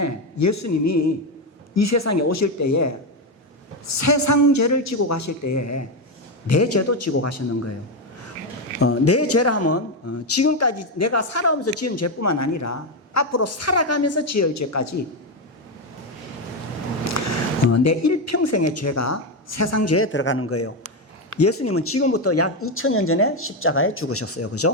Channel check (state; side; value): normal; both; correlation 0.09